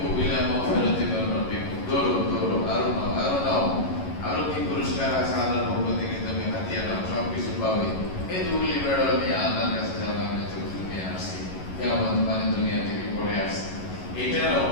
ইলা মাগফিরাতিন মির রাব্বিকুম, দৌড়ো দৌড়ো, আরো নাও আরো নাও, আরো কি পুরস্কার আছে আল্লাহর পক্ষ থেকে, তুমি হাতিয়া নাও, সব কিছু পাবে। এই দুগুলি বেড়া নিয়ে আল্লাহর কাছে যাওয়া আমি তো দুনিয়া আসছি, কেমন মানে দুনিয়া থেকে পড়ে আসছি, এটার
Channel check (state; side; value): late; right; 11 ms